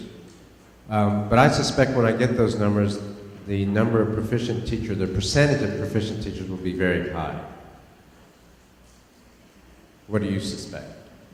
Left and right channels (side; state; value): both; identical; correlation 1.00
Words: But I suspect when I get those numbers, the number of proficient teachers, the percentage of proficient teachers will be very high. What do you suspect?